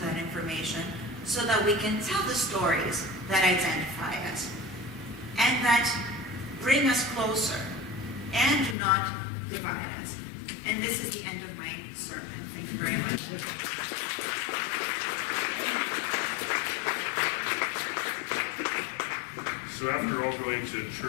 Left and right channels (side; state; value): right; drops out; at 8.8 s